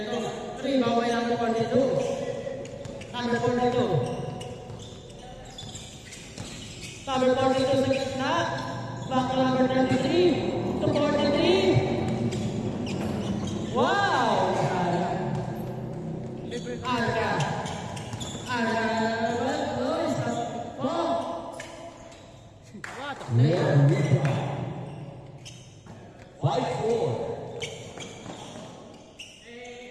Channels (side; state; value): both; identical; correlation 1.00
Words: 3, baway number 42. Number 42. Number 42 sa gitna. Back to number 33. To 43. Wow! Arca. What a player.